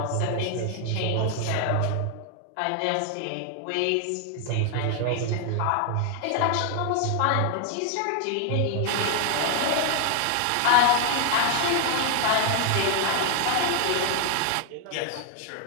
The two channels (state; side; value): different; both; correlation 0.00